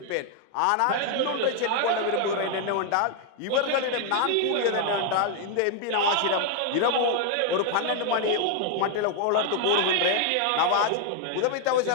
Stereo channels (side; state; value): both; different; correlation 0.00